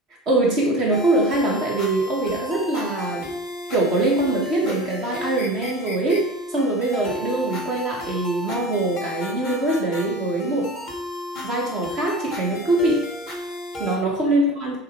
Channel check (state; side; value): normal; both; correlation 0.34